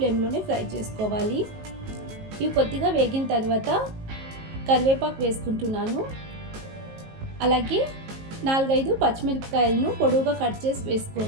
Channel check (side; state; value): left; late; 19 ms